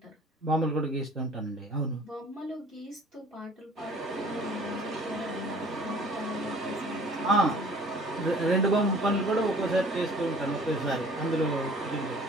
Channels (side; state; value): both; normal; correlation 0.51